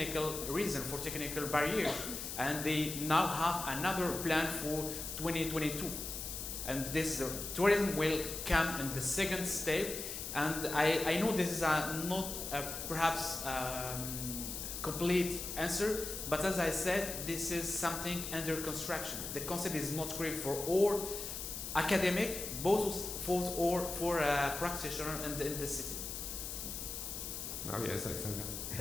reason, for technical barriers, and they now have another plan for 2022, and this tourism will come in the second step. And I know this is not perhaps complete answer, but as I said, this is something under construction. The concept is not clear for all academic, both for practitioners in the cities. Now, yes, Alexandra.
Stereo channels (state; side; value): noise; left; hiss, 6 dB below the sound